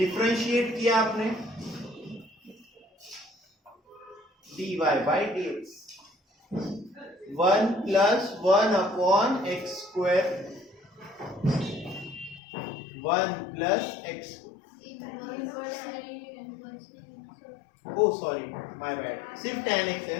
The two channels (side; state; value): right; drops out; at 12.4 s